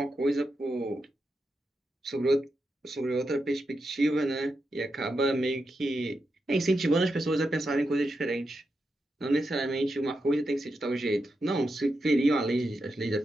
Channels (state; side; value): normal; both; correlation 0.87